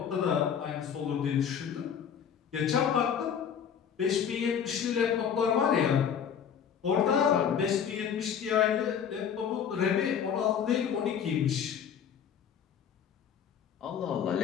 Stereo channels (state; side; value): quieter; right; 8.0 dB